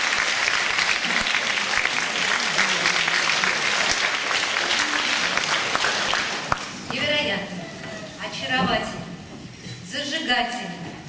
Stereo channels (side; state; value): both; identical; correlation 1.00